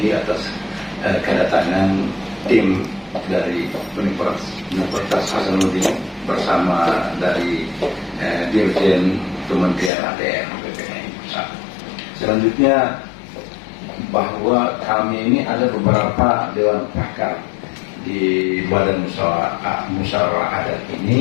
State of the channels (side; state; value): right; drops out; at 9.9 s